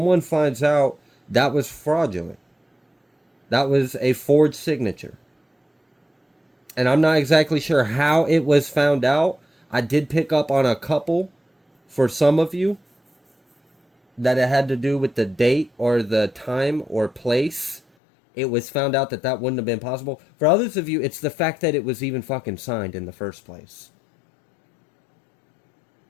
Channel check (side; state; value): right; drops out; at 17.8 s